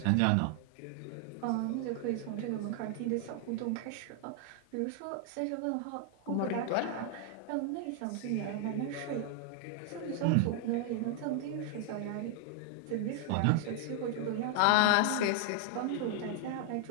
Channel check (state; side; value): different; both; correlation 0.00